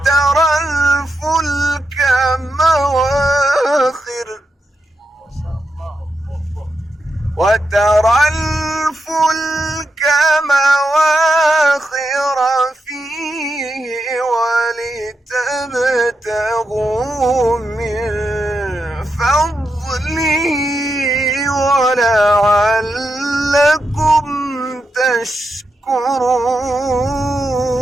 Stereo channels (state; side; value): normal; both; correlation 0.86